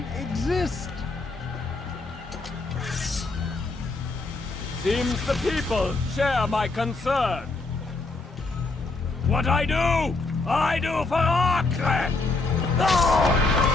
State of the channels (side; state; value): right; quieter; 3.5 dB